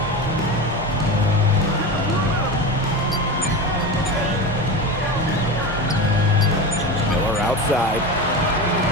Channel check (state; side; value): normal; both; correlation 0.25